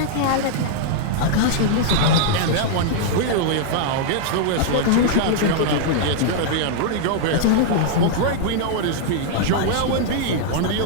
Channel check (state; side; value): different; both; correlation -0.01